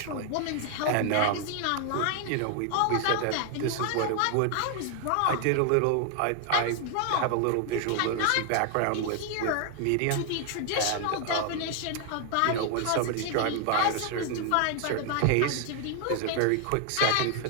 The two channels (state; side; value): different; both; correlation 0.00